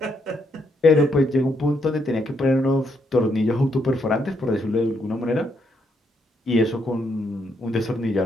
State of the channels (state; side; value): normal; both; correlation 0.76